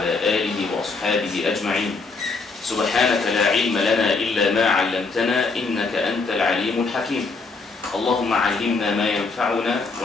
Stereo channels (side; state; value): right; quieter; 4.1 dB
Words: آله وأصحابه أجمعين. سبحانك لا علم لنا إلا ما علمتنا إنك أنت العليم الحكيم. اللهم علمنا ما ينفعنا